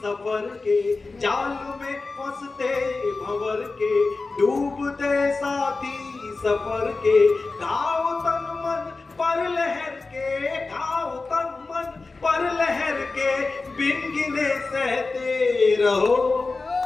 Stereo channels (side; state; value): right; quieter; 3.8 dB